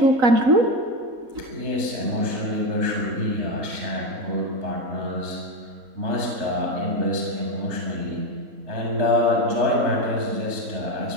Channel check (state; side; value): late; left; 3.4 ms